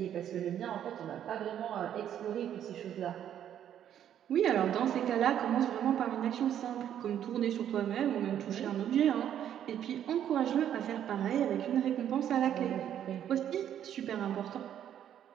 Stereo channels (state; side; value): quieter; left; 10.2 dB